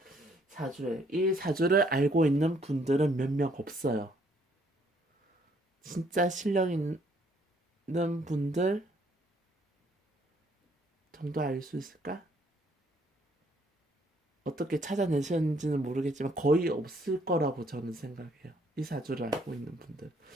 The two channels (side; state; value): both; normal; correlation 0.66